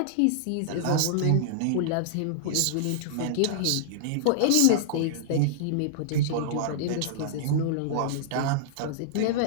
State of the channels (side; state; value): both; different; correlation -0.01